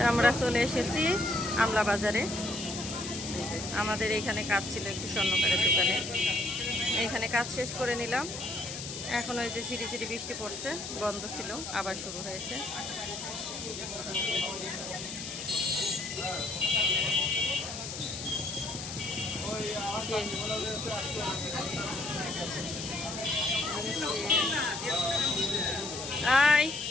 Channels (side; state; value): left; noise; hiss, 8 dB below the sound